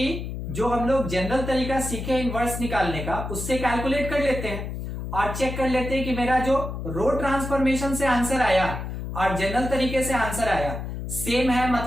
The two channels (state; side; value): noise; left; hum, 6 dB below the sound